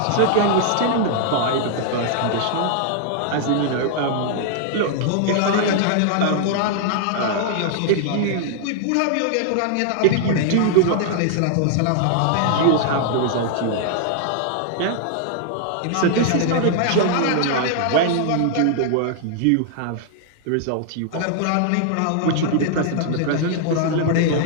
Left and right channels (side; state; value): both; different; correlation -0.01